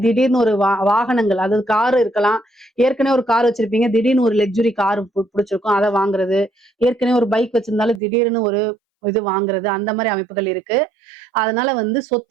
திடீர்னு ஒரு வாகனங்கள், அதாவது கார் இருக்கலாம். ஏற்கனவே ஒரு கார் வச்சிருப்பீங்க, திடீர்னு ஒரு லக்ஸுரி கார் பிடிச்சிருக்கும், அதை வாங்குறது. ஏற்கனவே ஒரு பைக் வச்சிருந்தாலும் திடீர்னு ஒரு இது வாங்குறது, அந்த மாதிரி அமைப்புகள் இருக்கு. அதனால வந்து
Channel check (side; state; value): left; drops out; at 8.0 s